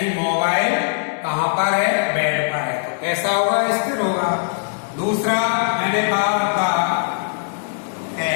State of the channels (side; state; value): right; silent; digital silence